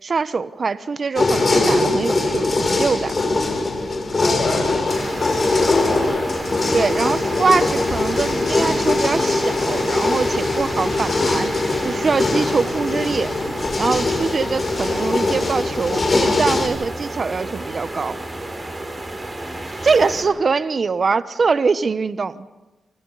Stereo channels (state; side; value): normal; both; correlation 0.89